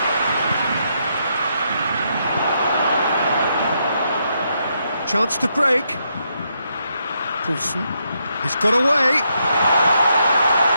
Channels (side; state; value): both; inverted; correlation -0.79